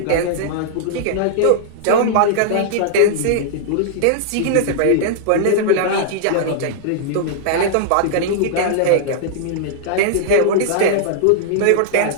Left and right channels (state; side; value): different; both; correlation -0.01